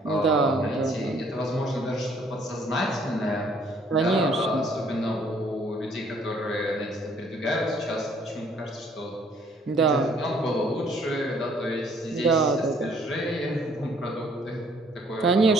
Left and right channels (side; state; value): both; normal; correlation 0.62